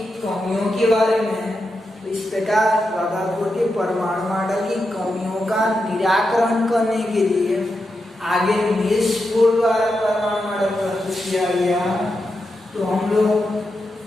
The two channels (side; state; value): both; normal; correlation 0.87